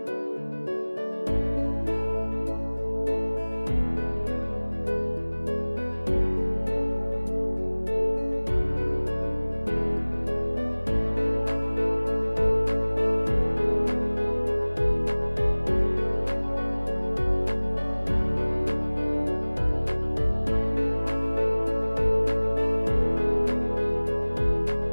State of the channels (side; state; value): both; inverted; correlation -1.00